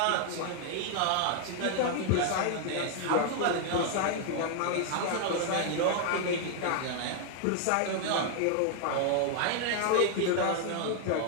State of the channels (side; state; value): both; different; correlation 0.00